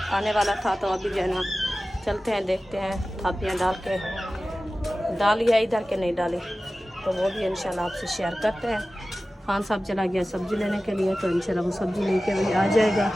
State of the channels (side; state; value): both; normal; correlation 0.96